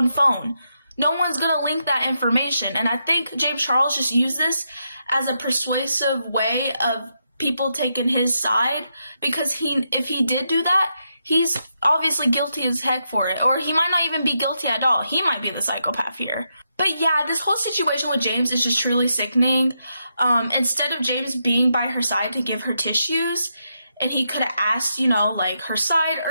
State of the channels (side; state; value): both; inverted; correlation -0.82